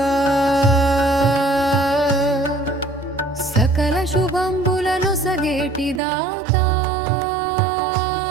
సకల శుభంబులను సగేటిదాత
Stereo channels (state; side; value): drops out; left; at 6.0 s